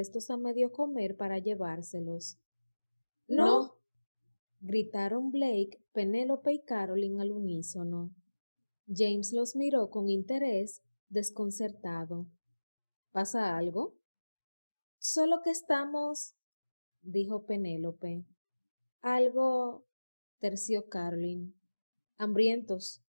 a medio comer para llevárselos. ¡No! Gritaron Blake, Penélope y Caroline al unísono. James los miró con interés, desconcertado. ¿Pasa algo? Solo que estamos, dijo Penélope. Algo, terció Caroline. Hambrientos,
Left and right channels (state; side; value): inverted; both; correlation -1.00